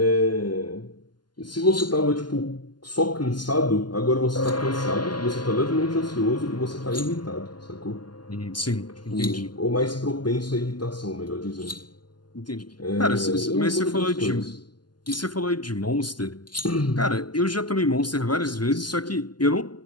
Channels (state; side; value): late; right; 0.71 ms